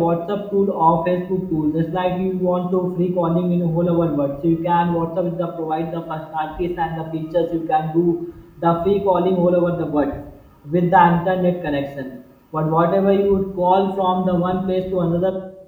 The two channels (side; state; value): both; identical; correlation 1.00